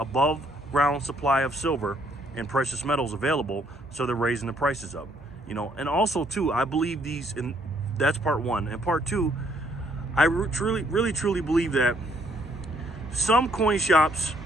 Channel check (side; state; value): both; normal; correlation 0.68